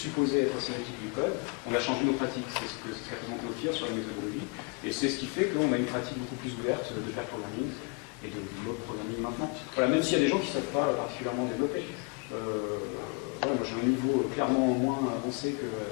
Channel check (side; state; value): right; quieter; 32.3 dB